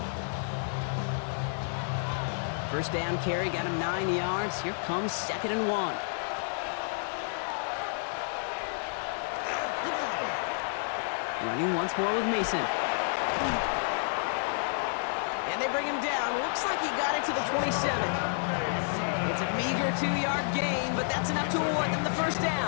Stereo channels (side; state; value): right; silent; digital silence